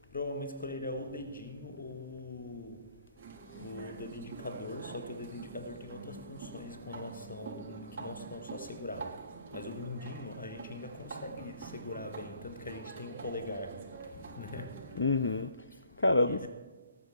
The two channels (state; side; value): inverted; both; correlation -0.61